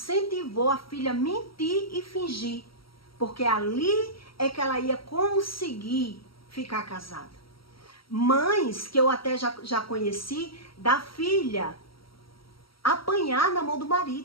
a filha a mentir e fingir. Porque ali é que ela ia conseguir ficar casada. Mães que eu até já conheci, da filha apanhar na mão do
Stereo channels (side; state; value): right; late; 0.75 ms